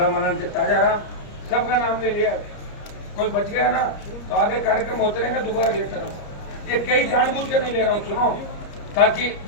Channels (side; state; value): right; late; 30 ms